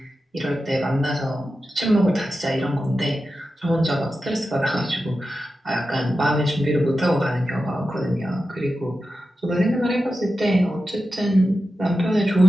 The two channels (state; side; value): normal; both; correlation 0.92